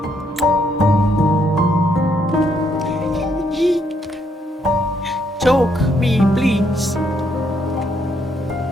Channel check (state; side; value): normal; both; correlation 0.73